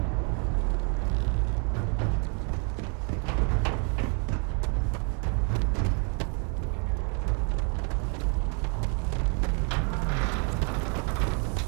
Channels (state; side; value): quieter; left; 39.0 dB